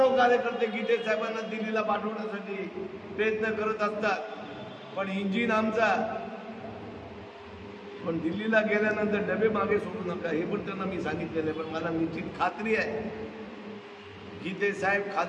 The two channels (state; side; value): identical; both; correlation 1.00